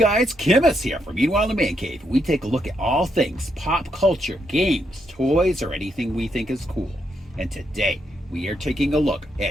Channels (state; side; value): normal; both; correlation 0.79